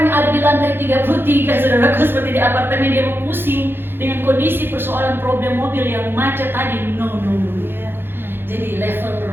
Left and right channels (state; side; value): late; left; 0.10 ms